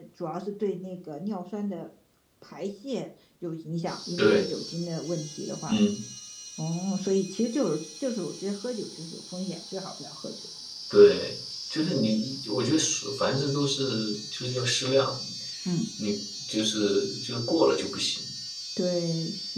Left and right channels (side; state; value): both; identical; correlation 1.00